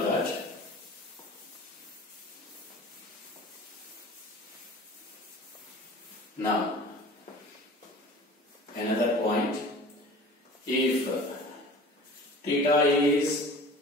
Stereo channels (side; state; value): both; normal; correlation 0.42